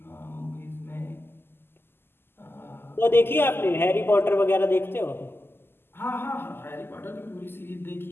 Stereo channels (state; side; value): late; right; 0.11 ms